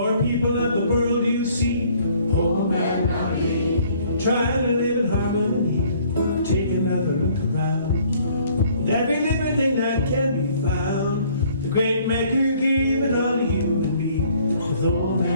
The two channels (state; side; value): inverted; both; correlation -0.60